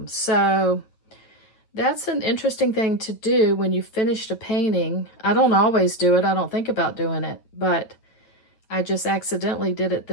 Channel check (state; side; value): late; right; 9.1 ms